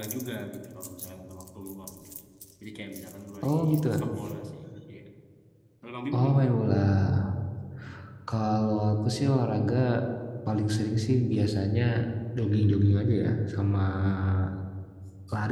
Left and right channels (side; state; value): both; identical; correlation 1.00